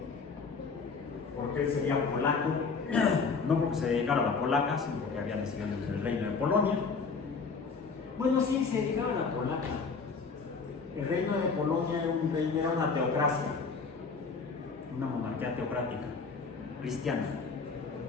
porque él sería polaco, no porque se dedicara a la polaca, sino porque había nacido en el reino de Polonia. Bueno, sí, se dedicaba a la polaca. El reino de Polonia era una teocracia, una monarquía teocrática, cristiana,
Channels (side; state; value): right; quieter; 4.9 dB